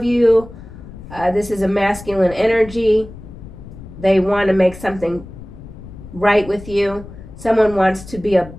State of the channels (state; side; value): noise; left; rumble, 16 dB below the sound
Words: you, this is a masculine energy. They want to make something right with you. Someone wants to be a